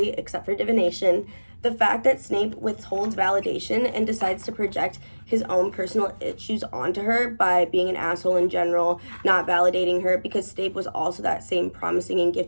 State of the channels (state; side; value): inverted; both; correlation -1.00